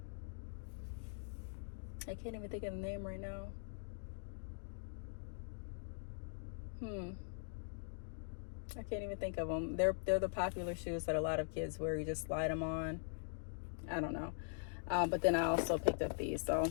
I can't even think of the name right now. I can't even think of them. They're the popular shoes that a lot of kids wear. You just slide them on. I don't know. But then I also picked up these. So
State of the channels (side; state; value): right; silent; digital silence